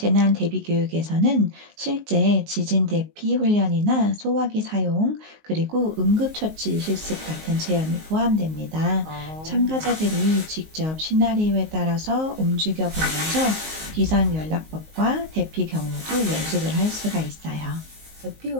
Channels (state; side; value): late; left; 19 ms